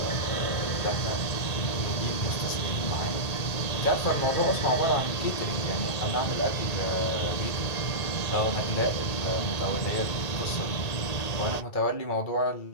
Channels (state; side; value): late; right; 1.8 ms